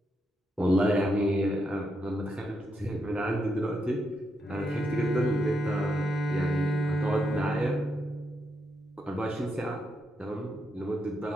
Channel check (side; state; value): both; normal; correlation 0.81